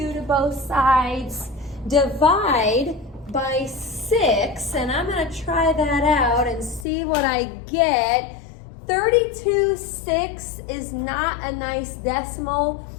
to both sides, divide by 6, and I'm going to try that out and see what I get. 32/6 is not a nice decimal.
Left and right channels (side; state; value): right; drops out; at 6.9 s